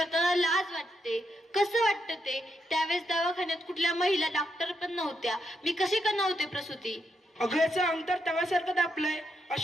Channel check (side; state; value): both; normal; correlation 0.80